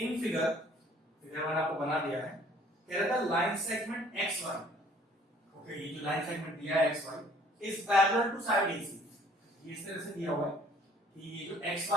फिगर मैंने आपको बना दिया है। कह रहा था line segment X Y, okay, ये जो लाइन सेगमेंट दिया है X Y is parallel to side AC. ये इस तरह से दिया हुआ है कि ये जो एक्स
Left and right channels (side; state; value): both; normal; correlation 0.56